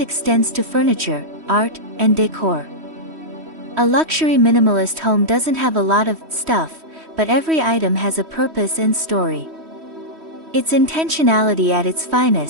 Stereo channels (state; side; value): late; left; 3.1 ms